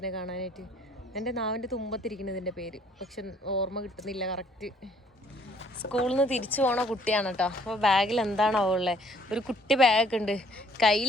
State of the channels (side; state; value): both; normal; correlation 0.60